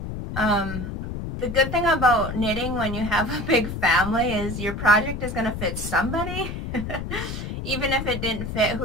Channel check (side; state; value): left; noise; rumble, 6 dB below the sound